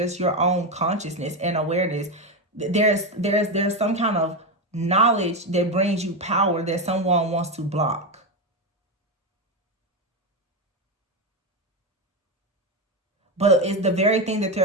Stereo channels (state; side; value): normal; both; correlation 0.12